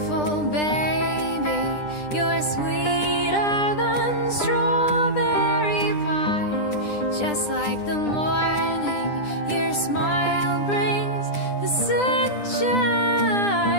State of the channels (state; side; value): late; right; 9.9 ms